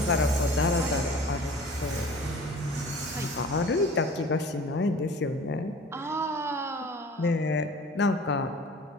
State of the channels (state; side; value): normal; both; correlation 0.43